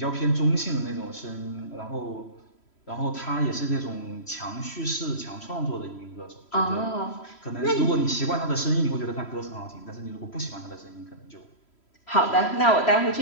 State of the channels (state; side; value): late; right; 3.1 ms